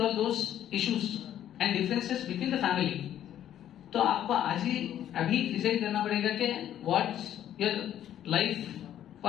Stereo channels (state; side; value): quieter; right; 11.1 dB